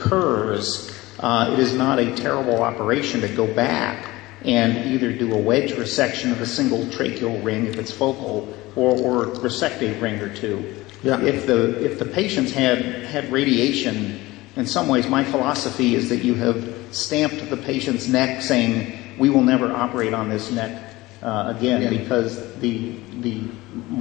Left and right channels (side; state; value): right; quieter; 19.7 dB